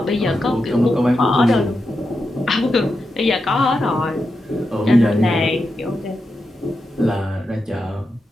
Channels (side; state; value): both; normal; correlation 0.88